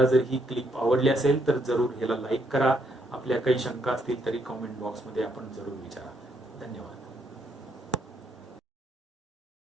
जर ही क्लिप आवडली असेल तर जरूर ह्याला लाईक करा. आपल्या काही शंका असतील तरी कॉमेंट बॉक्समध्ये आपण जरूर विचारा. धन्यवाद.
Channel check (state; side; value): normal; both; correlation 0.74